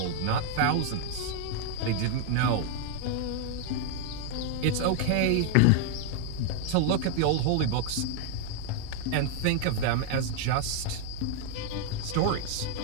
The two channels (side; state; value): both; different; correlation 0.00